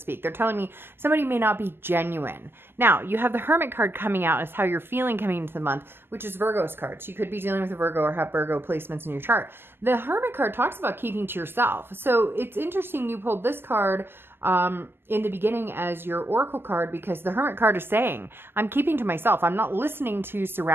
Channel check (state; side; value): late; left; 0.11 ms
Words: They're telling me somebody may not be genuine. Now, you have the Hermit card coming out as how you're feeling coming into the month, which is Virgo's card. So you could be dealing with a Virgo or have Virgo placements in your chart. The Hermit card talks about keeping to yourself. So it's interesting you pulled this card in the beginning as your oracle card, because the Hermit card is saying, I'm keeping to myself. I'm not listening to